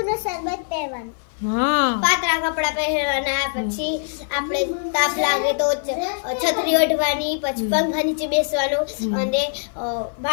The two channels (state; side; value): silent; right; 55 dB below the other